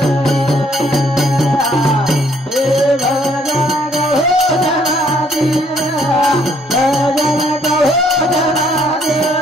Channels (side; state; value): both; normal; correlation 0.66